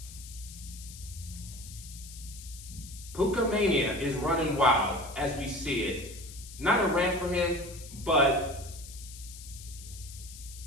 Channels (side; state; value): left; noise; hiss, 15 dB below the sound